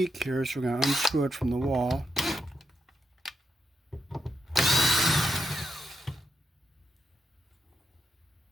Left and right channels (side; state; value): both; normal; correlation 0.84